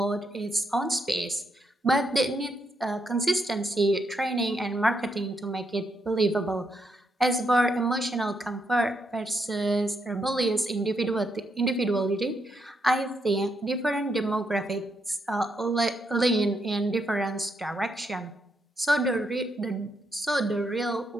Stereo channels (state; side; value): normal; both; correlation 0.78